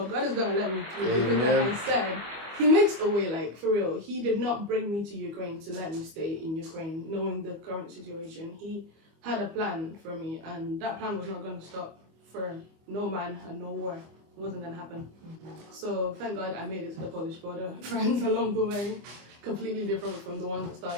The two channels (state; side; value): late; left; 24 ms